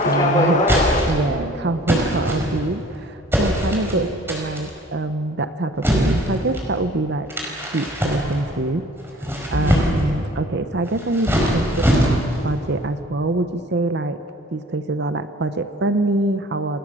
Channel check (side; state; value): both; normal; correlation 0.52